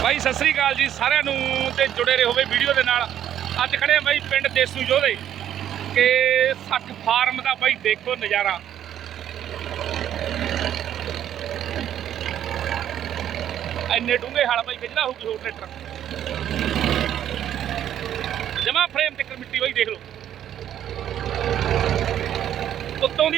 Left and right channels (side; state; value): left; quieter; 10.7 dB